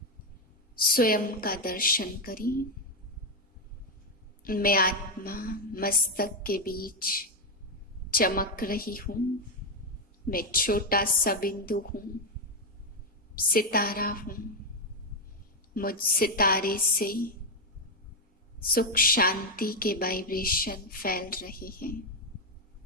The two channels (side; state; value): both; normal; correlation 0.04